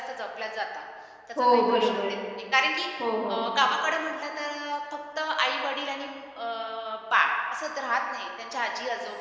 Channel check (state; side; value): identical; both; correlation 1.00